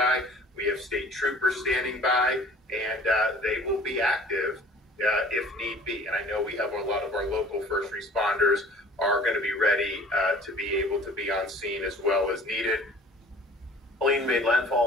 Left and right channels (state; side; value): normal; both; correlation 0.49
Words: We have state troopers standing by, and they will be active if need be. And I know we have a lot of our local first responders are going to be ready to be able to be on scene as well as needed. Helene made